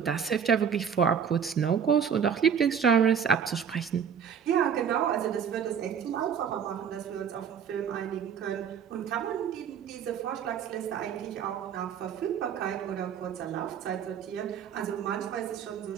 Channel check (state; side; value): quieter; left; 7.6 dB